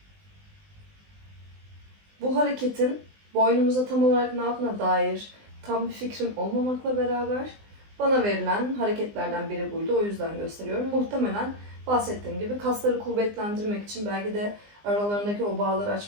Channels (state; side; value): late; left; 20 ms